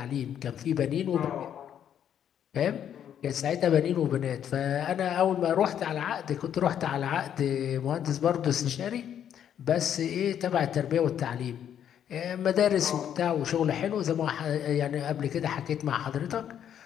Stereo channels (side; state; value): right; quieter; 9.5 dB